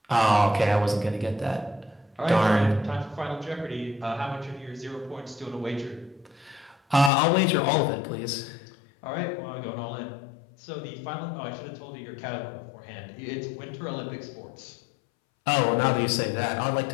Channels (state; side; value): drops out; right; at 7.1 s